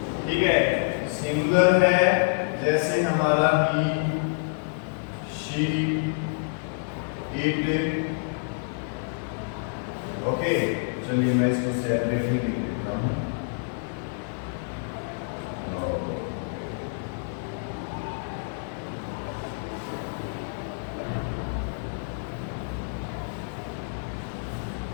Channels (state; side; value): silent; right; 60 dB below the other